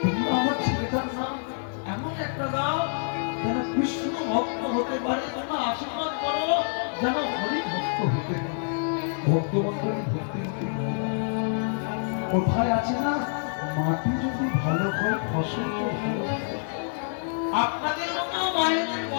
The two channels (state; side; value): silent; right; digital silence